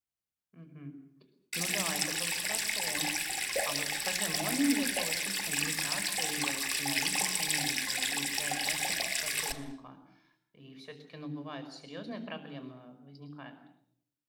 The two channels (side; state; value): both; identical; correlation 1.00